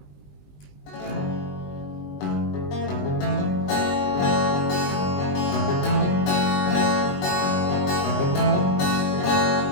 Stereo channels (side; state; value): right; late; 20 ms